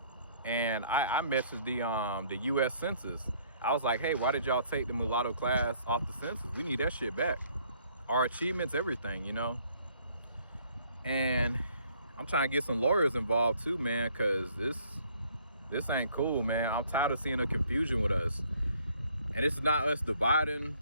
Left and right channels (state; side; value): inverted; both; correlation -0.62